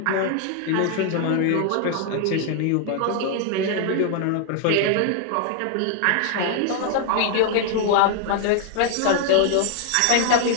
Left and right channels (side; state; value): both; different; correlation 0.00